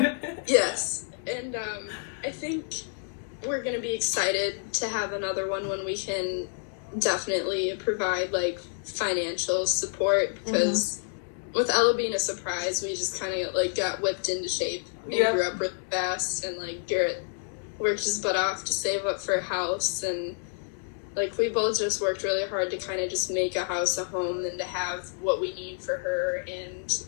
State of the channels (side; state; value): right; silent; 59 dB below the other